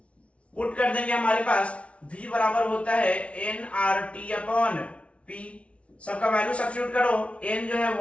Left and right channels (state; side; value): late; right; 0.062 ms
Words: पुट कर देंगे, हमारे पास V बराबर होता है nRT अपॉन P। सबका वैल्यू सब्स्टिट्यूट करो, n जो है